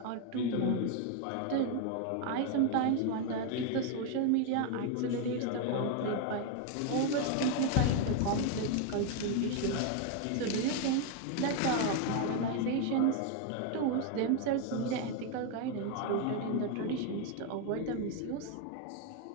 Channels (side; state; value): both; different; correlation 0.01